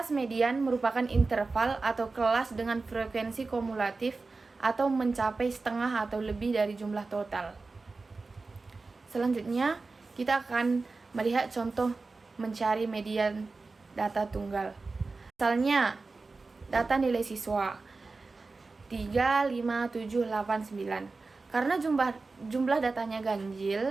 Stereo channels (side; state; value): left; quieter; 3.8 dB